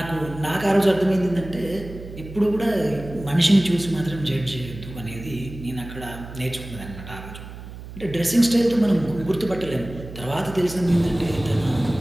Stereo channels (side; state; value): right; noise; hum, 13 dB below the sound